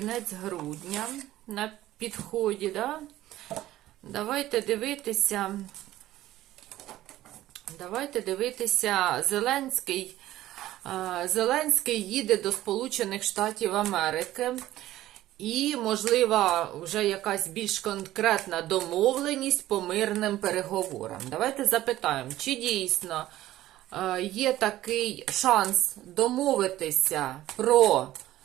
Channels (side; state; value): left; quieter; 14.7 dB